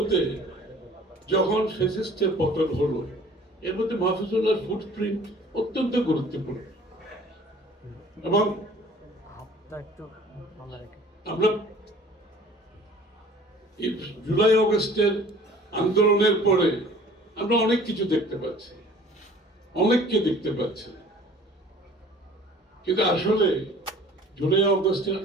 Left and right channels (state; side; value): normal; both; correlation 0.49